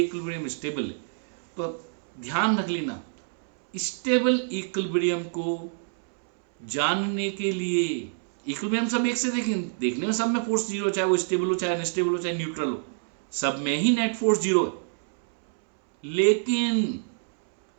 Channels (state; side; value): silent; left; 61 dB below the other